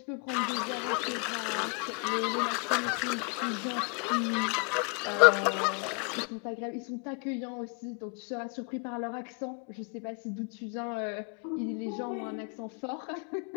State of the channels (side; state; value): right; quieter; 35.6 dB